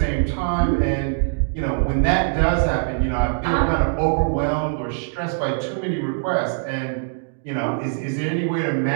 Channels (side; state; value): left; silent; digital silence